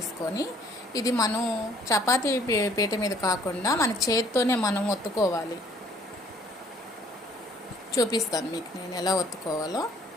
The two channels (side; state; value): both; normal; correlation 0.59